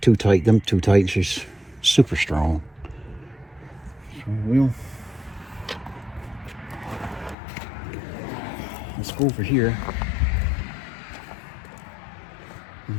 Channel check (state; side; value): drops out; right; at 7.4 s